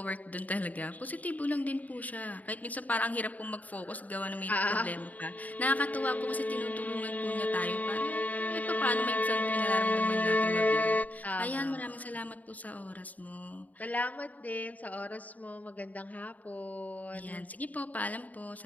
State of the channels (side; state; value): right; late; 0.075 ms